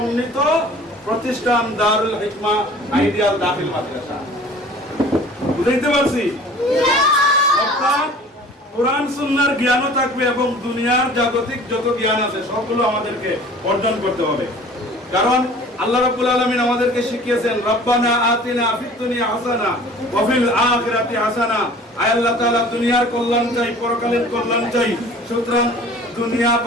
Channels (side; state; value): both; normal; correlation 0.46